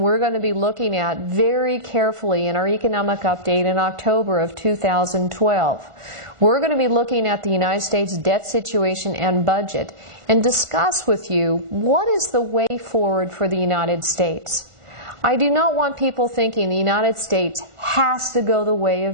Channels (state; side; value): late; left; 1.5 ms